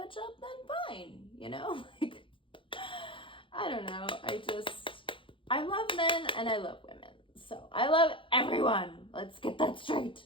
up, then fine, you know? Like, I don't know. I love men and I love women. So I love everyone. Let's get that straight.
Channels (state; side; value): late; right; 0.25 ms